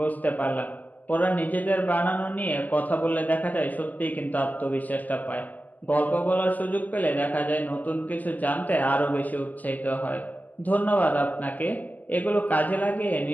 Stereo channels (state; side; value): late; right; 0.081 ms